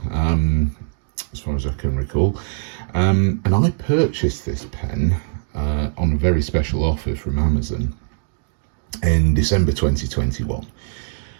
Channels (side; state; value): left; silent; digital silence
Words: as far as I can recall. And I purchased this pen on a very special offer from Amazon in December 2021.